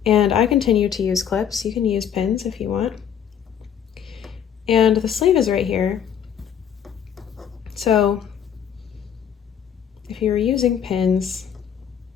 and I continue to use clips. You can use pins if you want. And the sleeve is right here. So if you were using pins,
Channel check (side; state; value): right; quieter; 8.6 dB